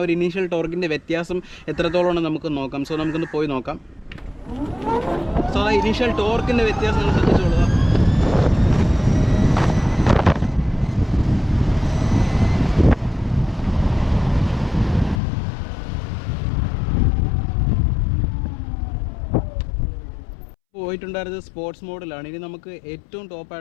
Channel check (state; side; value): drops out; right; at 15.2 s